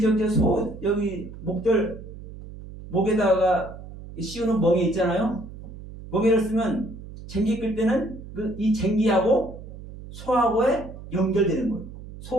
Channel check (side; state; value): right; noise; hum, 14 dB below the sound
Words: 여기 목에다가 씌우는 멍에 있잖아요. 멍에를 쓰면 쟁기 끌 때는 이 쟁기하고 소하고에 연결되는 거예요.